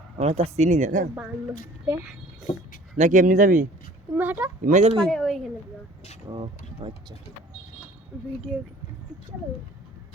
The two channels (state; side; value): normal; both; correlation 0.50